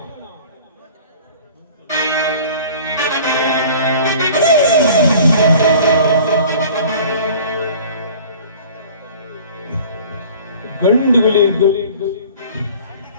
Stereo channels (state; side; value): inverted; both; correlation -0.46